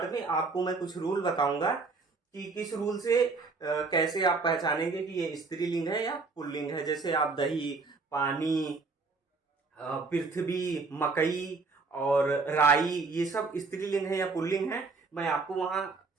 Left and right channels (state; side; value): quieter; left; 4.1 dB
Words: में आपको मैं कुछ रूल बताऊंगा कि किस रूल से कैसे आप पहचानेंगे कि ये स्त्रीलिंग है या पुल्लिंग है। जैसे आप दही, पानी, पृथ्वी, मकई और राई, ये सब स्त्रीलिंग है या पुल्लिंग है। मैं आपको वहां